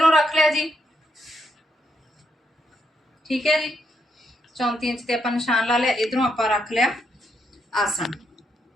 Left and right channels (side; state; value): both; normal; correlation 0.78